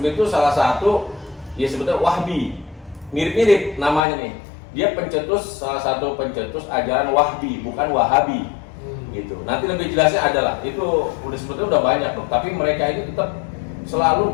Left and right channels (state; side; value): drops out; right; at 4.0 s